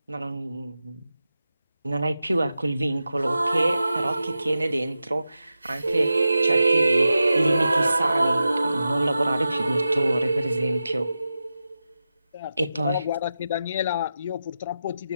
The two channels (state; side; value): inverted; both; correlation -0.91